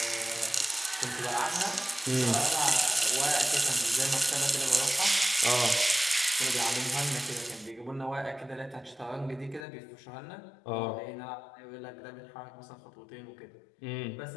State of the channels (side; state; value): right; drops out; at 9.7 s